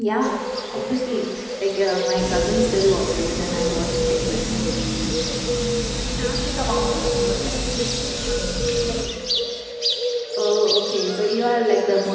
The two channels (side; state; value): both; identical; correlation 1.00